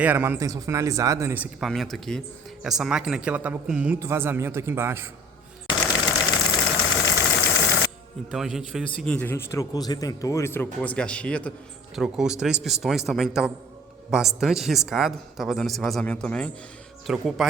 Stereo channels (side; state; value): both; normal; correlation 0.49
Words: manutenção finalizada nesse equipamento aqui. Essa máquina aqui ela tava com muito vazamento aqui embaixo. Então a gente fez o seguinte, a gente trocou os retentores, trocou as gachetas, trocou os 3 pistões também, que tava bastante riscado, tava dando esse vazamento também. Trocou o